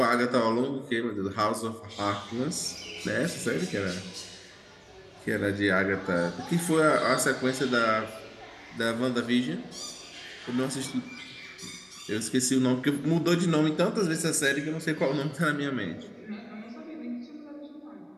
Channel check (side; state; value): both; identical; correlation 1.00